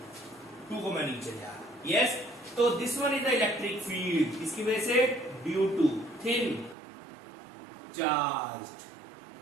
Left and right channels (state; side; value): drops out; left; at 6.8 s